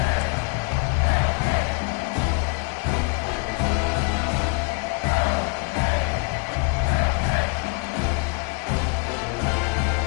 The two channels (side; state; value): right; quieter; 31.5 dB